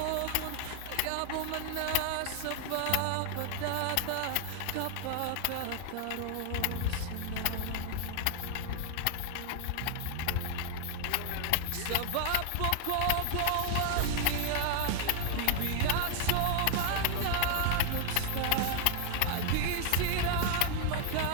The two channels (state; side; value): different; both; correlation 0.00